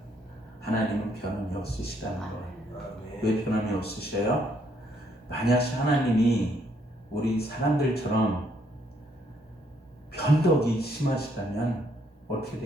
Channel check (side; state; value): both; normal; correlation 0.70